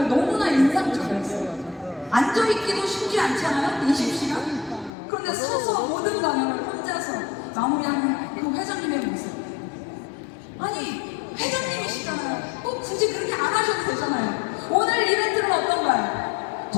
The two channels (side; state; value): right; drops out; at 4.9 s